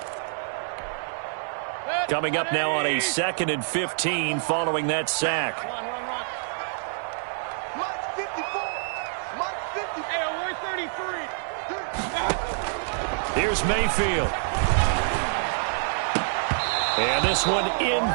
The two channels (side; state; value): left; silent; digital silence